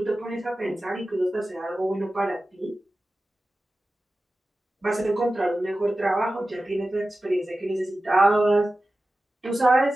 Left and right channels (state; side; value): normal; both; correlation 0.95